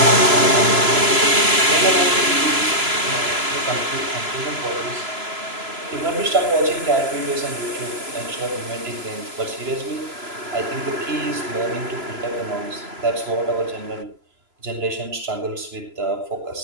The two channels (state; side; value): late; left; 3.0 ms